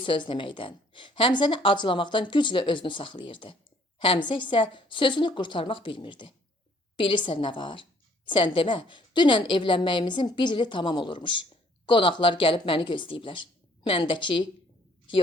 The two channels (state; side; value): normal; both; correlation 0.61